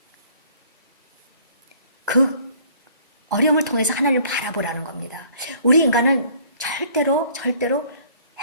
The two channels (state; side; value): inverted; both; correlation -0.56